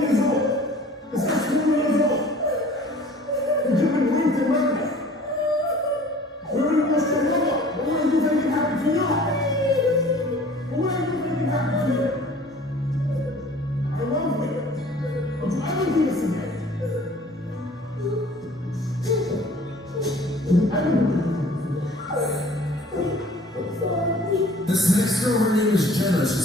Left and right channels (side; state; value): both; normal; correlation 0.49